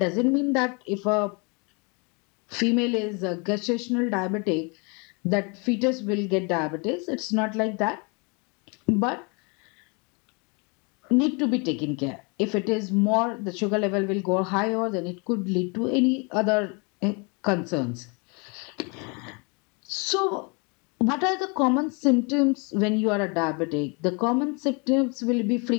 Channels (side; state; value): right; quieter; 32.0 dB